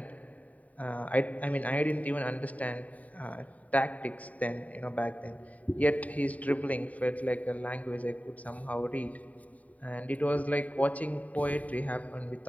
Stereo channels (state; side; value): late; right; 0.070 ms